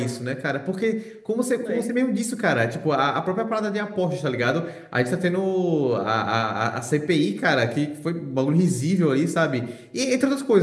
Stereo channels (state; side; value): identical; both; correlation 1.00